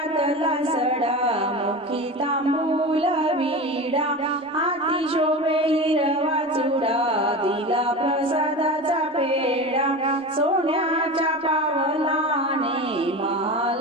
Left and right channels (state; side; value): normal; both; correlation 0.28